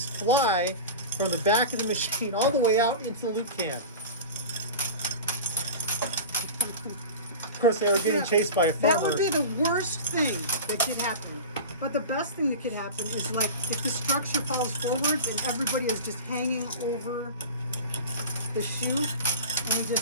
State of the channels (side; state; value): both; inverted; correlation -0.31